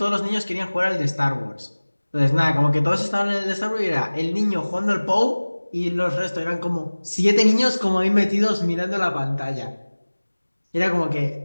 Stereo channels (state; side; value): inverted; both; correlation -1.00